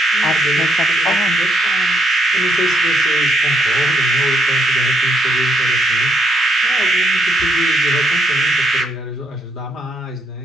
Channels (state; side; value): normal; both; correlation 0.74